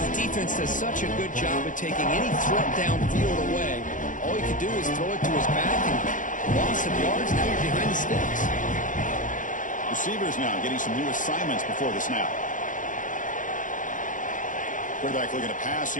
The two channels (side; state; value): right; late; 0.38 ms